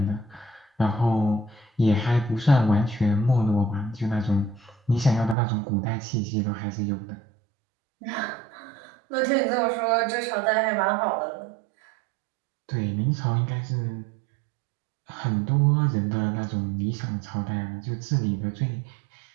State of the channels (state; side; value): drops out; left; at 5.4 s